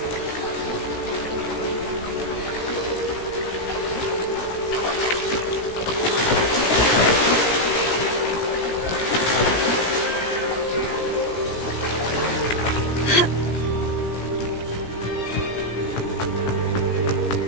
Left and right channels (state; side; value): late; right; 17 ms